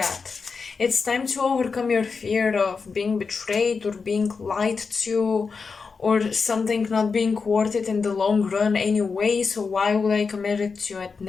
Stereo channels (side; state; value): right; quieter; 5.0 dB